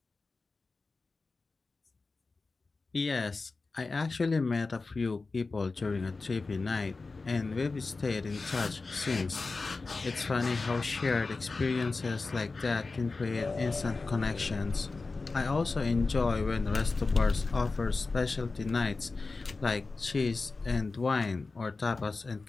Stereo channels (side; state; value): right; quieter; 3.8 dB